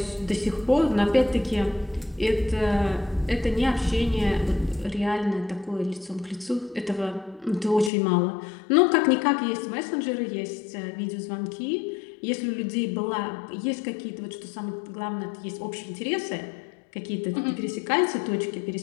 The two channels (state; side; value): drops out; right; at 7.9 s